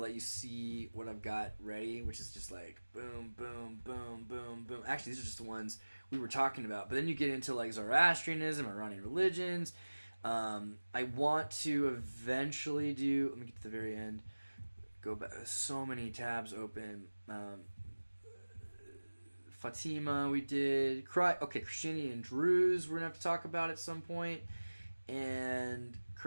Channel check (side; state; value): both; inverted; correlation -1.00